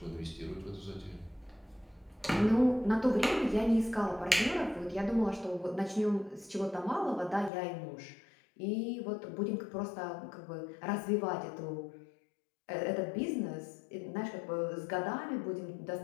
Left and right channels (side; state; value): right; drops out; at 7.5 s